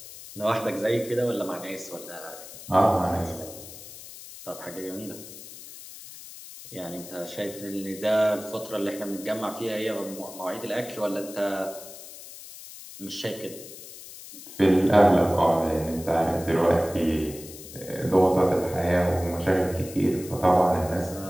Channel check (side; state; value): left; noise; hiss, 15 dB below the sound